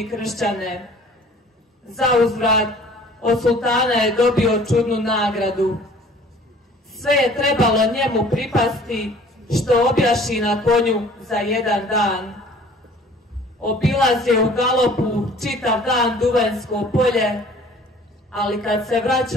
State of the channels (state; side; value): normal; both; correlation 0.51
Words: kršćane. Za uzvrat od sultana je dobio čudnu nagradu. Sve je trebalo njemu pripasti, što objaši na konju za jedan dan. Obilazio u galopu čitav dan Duvanjsko polje, ali kad se